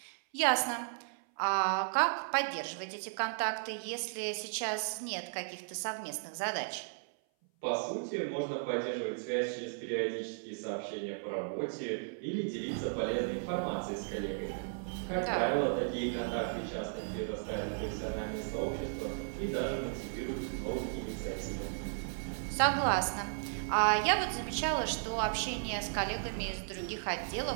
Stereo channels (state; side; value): silent; left; 54 dB below the other